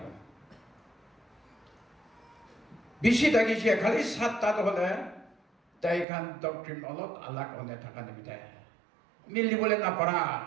bishi thakise khali satta hole তাই খান doctrine অলপ আলাক অনে থাকা নিমিতে মিলিবলে না পারা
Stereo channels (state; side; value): drops out; left; at 6.1 s